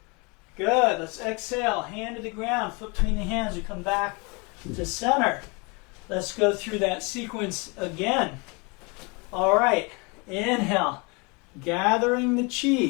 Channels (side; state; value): right; quieter; 29.8 dB